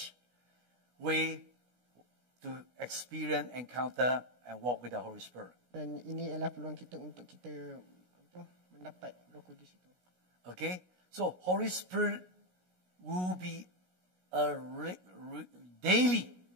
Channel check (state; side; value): late; left; 16 ms